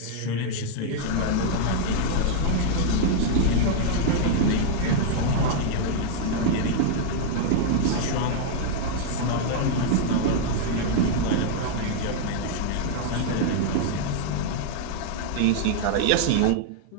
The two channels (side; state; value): both; different; correlation -0.01